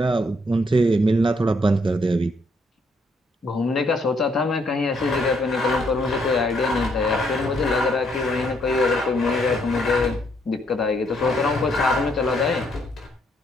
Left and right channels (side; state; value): both; normal; correlation 0.72